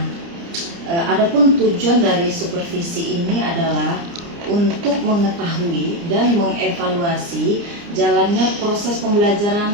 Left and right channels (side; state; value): left; late; 29 ms